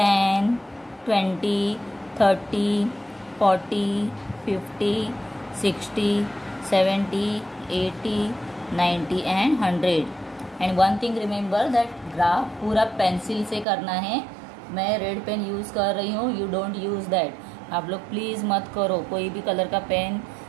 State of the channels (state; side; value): drops out; left; at 13.7 s